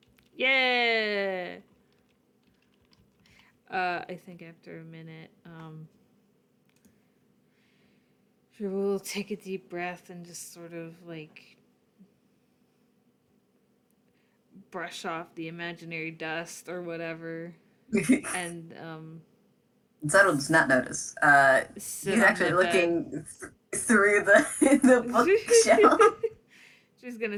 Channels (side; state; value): both; identical; correlation 1.00